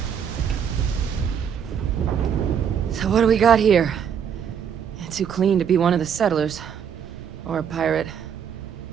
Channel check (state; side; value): quieter; left; 7.9 dB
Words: So what do we got here? It's too clean to be one of the settlers. Or a pirate.